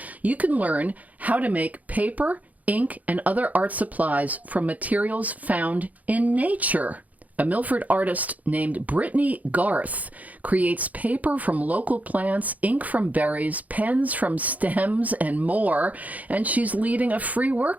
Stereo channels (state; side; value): late; left; 0.076 ms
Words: You can learn how to make paper, ink, and other art supplies from materials found in nature. A Milford artist named Brittany Garth creates paper from local plants, ink from berries, pens from stems, and more, and she's leading a free